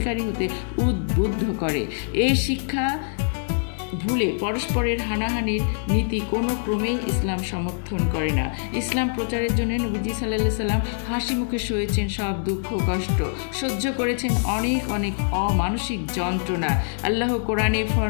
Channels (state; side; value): silent; right; 63 dB below the other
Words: হতে উদ্বুদ্ধ করে। এই শিক্ষা ভুলে পরস্পরের হানাহানির নীতি কোনো ক্রমেই ইসলাম সমর্থন করে না। ইসলাম প্রচারের জন্য নবীজি সাল্লাল্লাহু আলাইহি সাল্লাম হাসি মুখে সয়েছেন সব দুঃখ কষ্ট, সহ্য করেছেন অনেক অমানসিক যন্ত্রণা। আল্লাহ কোরআনে